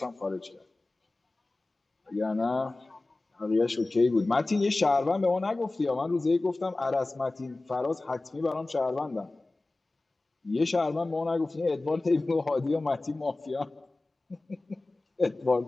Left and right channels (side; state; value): right; quieter; 3.0 dB